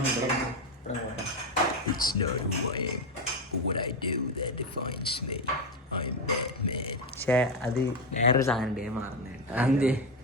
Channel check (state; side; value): normal; both; correlation 0.11